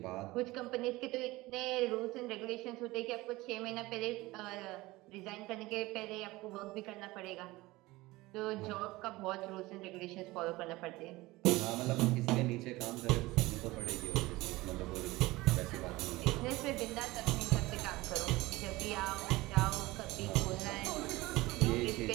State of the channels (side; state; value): left; quieter; 20.0 dB